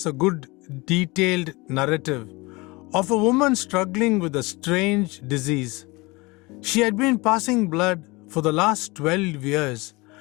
a good detailed narrative of a woman struggling with a strange disease. She had been passing blood for the last 12 years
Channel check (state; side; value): quieter; right; 24.3 dB